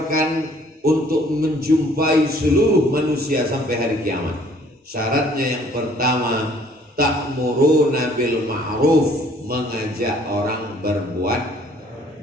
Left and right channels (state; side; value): normal; both; correlation 0.59